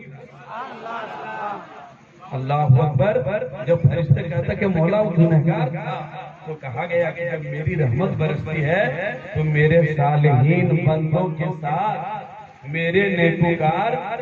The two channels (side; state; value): both; identical; correlation 1.00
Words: اللہ اکبر۔ جب فرشتے کہتا کہ مولا وہ گنہگار تھا تو کہا گیا کہ جب میری رحمت برستی ہے تو میرے صالحین بندوں کے ساتھ، میرے نیکوکار